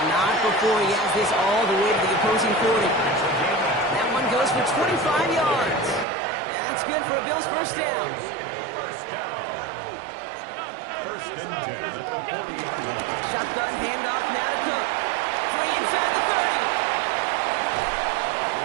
not before he has this all the way to the opposing 40. That one goes for 25 yards. And that's good for a Bills first down. First down. 1st and 10 at the 40-yard line. Shotgun handoff now to Cook. 3 inside the 30.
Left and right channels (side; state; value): left; drops out; at 6.1 s